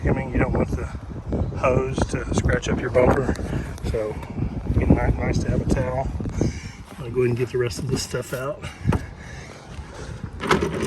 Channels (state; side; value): identical; both; correlation 1.00